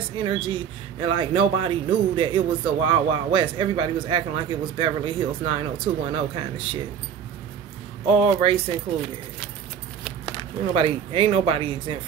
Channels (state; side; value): quieter; left; 8.0 dB